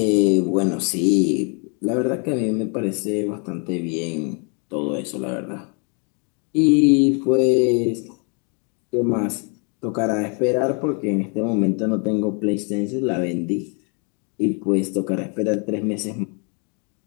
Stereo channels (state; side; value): quieter; right; 37.3 dB